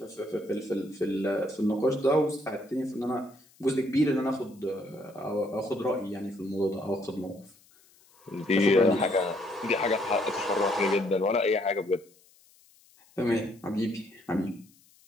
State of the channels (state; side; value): noise; left; hiss, 29 dB below the sound